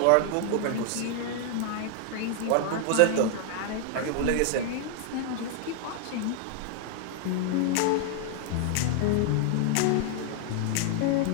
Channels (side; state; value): both; different; correlation 0.00